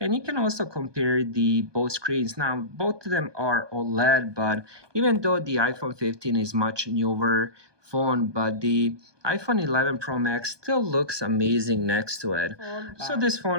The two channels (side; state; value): left; late; 1.2 ms